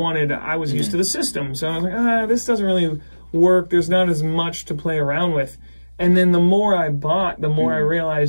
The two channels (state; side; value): inverted; both; correlation -1.00